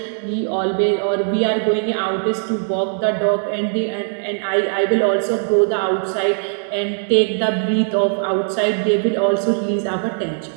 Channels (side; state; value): left; silent; 66 dB below the other